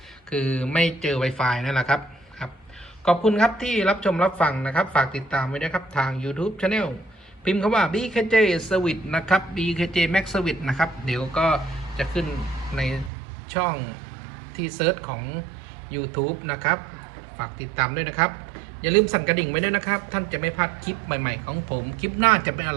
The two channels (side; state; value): left; drops out; at 13.1 s